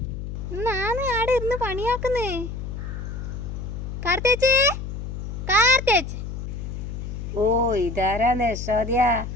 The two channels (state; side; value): noise; left; hum, 6 dB below the sound